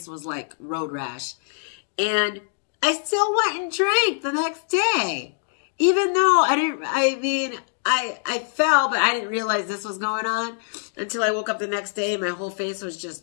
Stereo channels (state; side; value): silent; right; digital silence